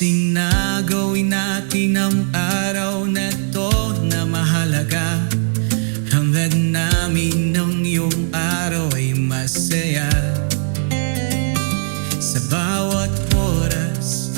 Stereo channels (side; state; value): left; silent; 67 dB below the other